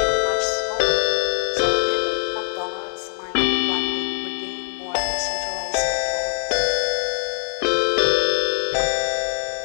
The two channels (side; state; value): right; silent; digital silence